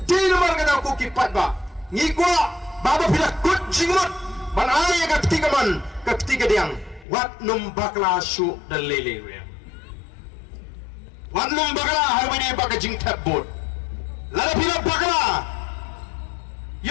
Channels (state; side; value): drops out; right; at 7.1 s